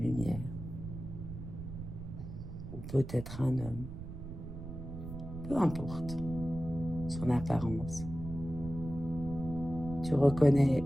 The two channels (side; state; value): right; noise; rumble, 9 dB below the sound